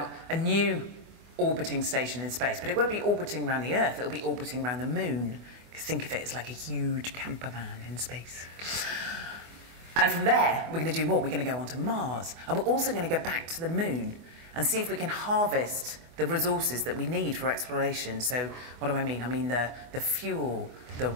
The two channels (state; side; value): late; left; 24 ms